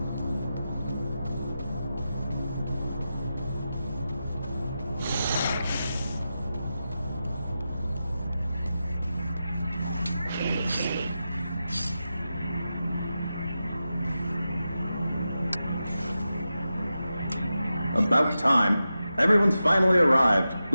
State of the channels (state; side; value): inverted; both; correlation -0.91